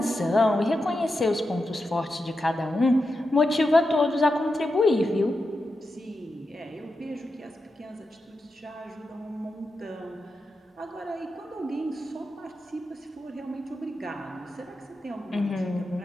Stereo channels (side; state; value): both; normal; correlation 0.89